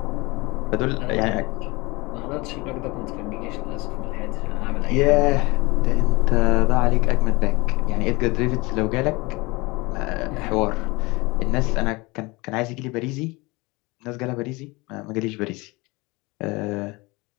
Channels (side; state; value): right; quieter; 24.3 dB